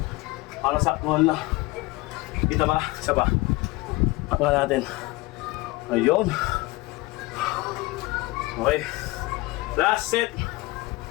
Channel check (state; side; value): quieter; right; 21.4 dB